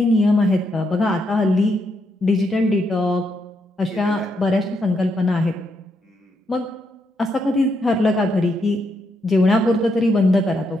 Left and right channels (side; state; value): both; normal; correlation 0.79